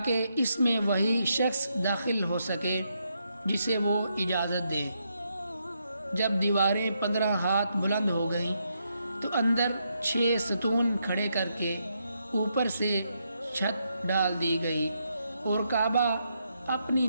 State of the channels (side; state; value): both; inverted; correlation -0.80